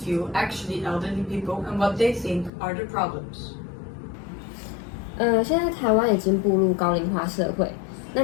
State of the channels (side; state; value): right; drops out; at 2.5 s